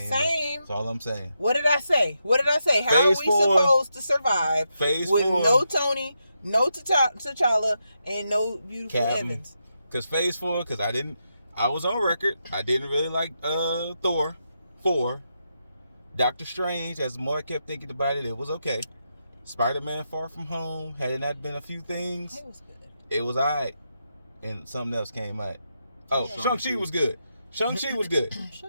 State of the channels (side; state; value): both; inverted; correlation -0.84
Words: Same. That's all I'm saying. What did I say? How Phase are we 4, supposed to survive with 4, no Tony, no T'Challa, and no beautiful Evans? Because Phase 4, I was on record. I didn't really like Thor 4. Doctor Strange, as the more I kept thinking about it, it was okay. Spider-Man Far From Home, had it not been a few things, it was good. It was alright. And something else came out. Oh, Shang-Chi was good. Shang-Chi was good.